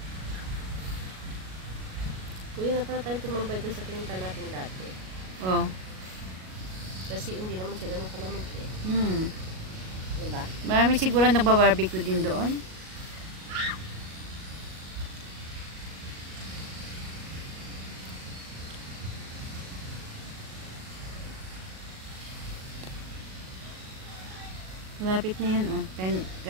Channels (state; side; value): late; left; 38 ms